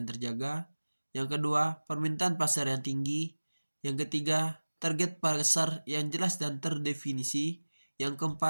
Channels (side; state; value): both; inverted; correlation -1.00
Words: terjaga, yang kedua permintaan pasar yang tinggi, yang ketiga target pasar yang jelas dan terdefinisi, yang